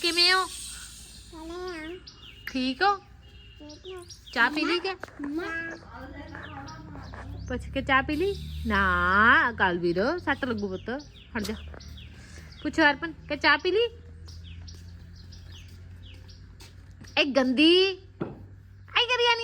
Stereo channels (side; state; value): both; identical; correlation 1.00